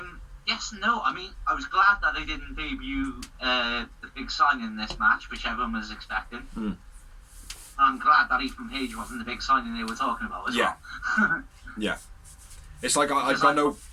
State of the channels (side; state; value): both; identical; correlation 1.00